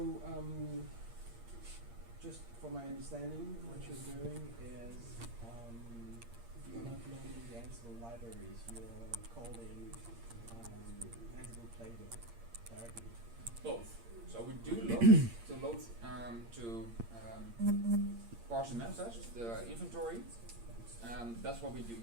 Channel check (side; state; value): left; late; 8.6 ms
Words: just for my understanding, what you're doing is you're not loading the Ansible libraries, you're calling Ansible Playbook directly. Both. So we do load to parse the manifest, the inventory. That's what we do